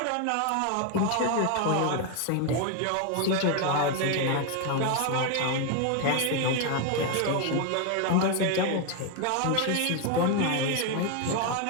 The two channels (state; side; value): different; both; correlation 0.01